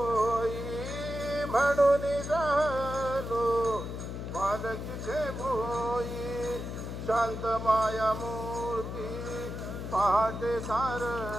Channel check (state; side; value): noise; left; hum, 6 dB below the sound